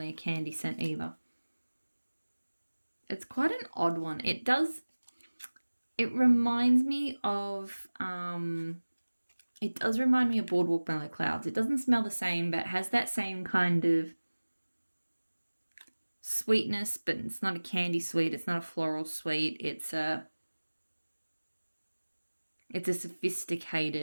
a candy scent either. It's quite an odd one. It reminds me of it does remind me of Boardwalk Mellow Clouds. It doesn't smell the same, but it has that same kind of sweetness, but it's not a candy sweet. It's not a floral sweet. It's a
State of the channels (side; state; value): both; inverted; correlation -1.00